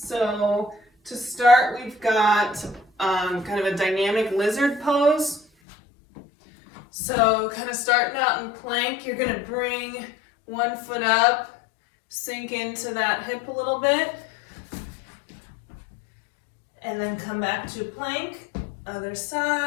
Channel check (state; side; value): drops out; right; at 5.5 s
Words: So to start, we've got kind of a dynamic lizard pose. So kind of starting out in plank, you're gonna bring one foot up, sink into that hip a little bit, and then come back to plank, other